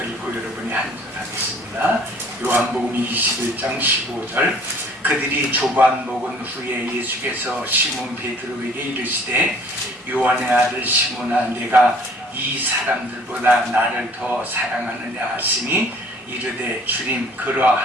읽고 여러분이 한 절 하겠습니다. 요한복음 21장 15절. 그들이 조반 먹은 후에 예수께서 시몬 베드로에게 이르시되 요한의 아들 시몬아 내가 이 사람들보다 나를 더 사랑하느냐 하시니 이르되 주님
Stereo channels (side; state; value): both; normal; correlation 0.55